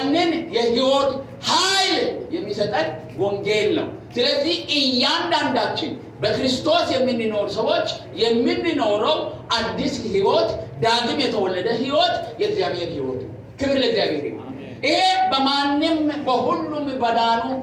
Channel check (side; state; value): both; identical; correlation 1.00